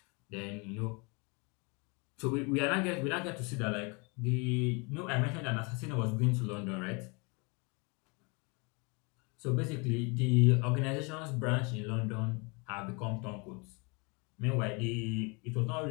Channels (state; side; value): quieter; right; 30.5 dB